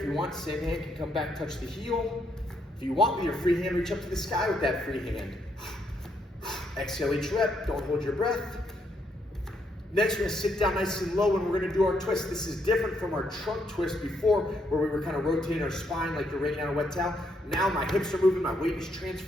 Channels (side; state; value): both; normal; correlation 0.75